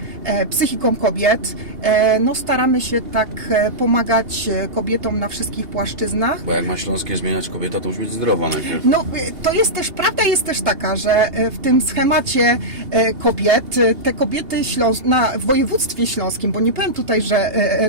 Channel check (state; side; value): late; left; 2.8 ms